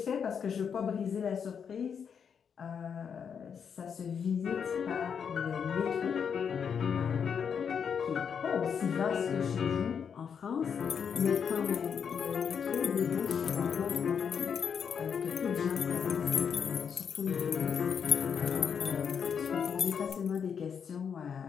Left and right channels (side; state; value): right; quieter; 7.1 dB